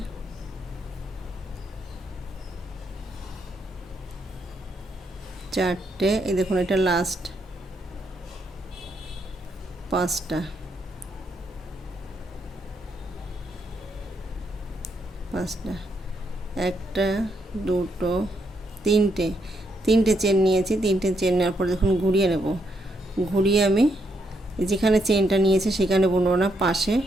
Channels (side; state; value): both; normal; correlation 0.77